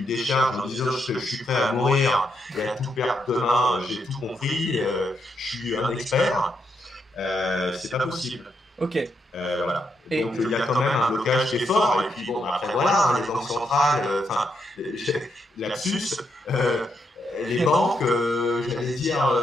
décharge en disant je suis prêt à mourir et à tout perdre demain, j'ai tout compris, je suis un expert. C'est pas possible. Ok. Voilà. Et donc il y a quand même un blocage qui est fort. Et puis bon, après voilà, hein, les banques centrales, enfin, lapsus, les banques, j'allais dire,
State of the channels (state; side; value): normal; both; correlation 0.79